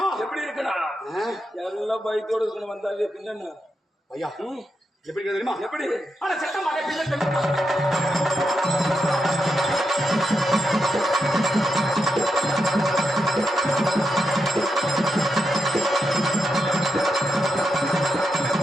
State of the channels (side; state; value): both; normal; correlation 0.85